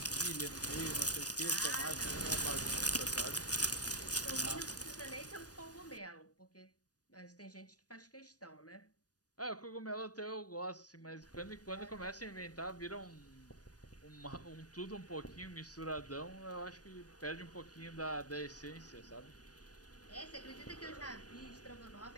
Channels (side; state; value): right; late; 0.68 ms